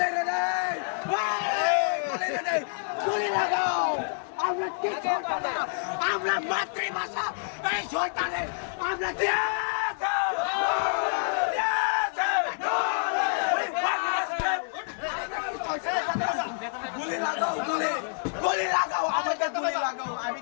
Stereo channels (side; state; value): right; silent; digital silence